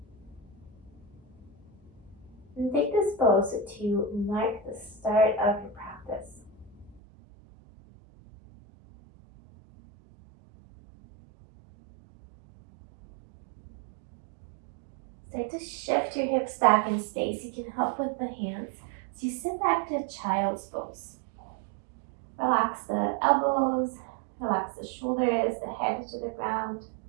And take this pose to mark the start of your practice. Start to shift your hips back in space. You can help with the hands. So you sit back to child's pose. Relax the elbows, relax the shoulders, the head to the ground.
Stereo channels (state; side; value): drops out; left; at 7.0 s